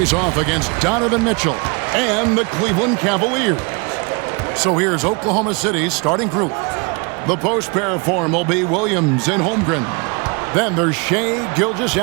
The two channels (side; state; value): left; quieter; 31.1 dB